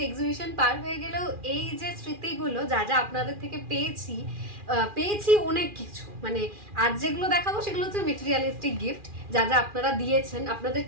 এক্সিবিশন পার হয়ে গেলেও এই যে স্মৃতিগুলো যা যা আপনাদের থেকে পেয়েছি পেয়েছি অনেক কিছু। মানে আজ যেগুলো দেখাবো সেগুলো হচ্ছে মেটেরিয়ালিস্টিক গিফট, যা যা আপনারা দিয়েছেন।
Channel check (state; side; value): late; left; 2.4 ms